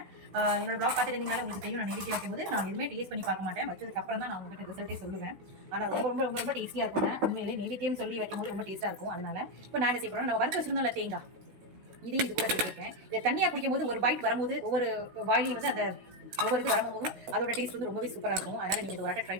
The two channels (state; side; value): late; left; 16 ms